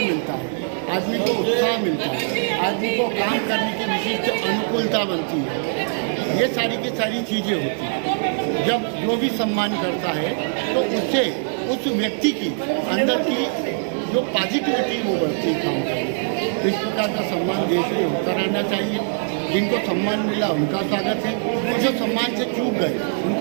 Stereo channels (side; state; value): left; silent; 62 dB below the other